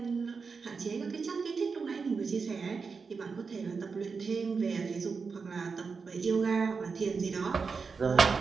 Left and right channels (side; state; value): left; quieter; 5.0 dB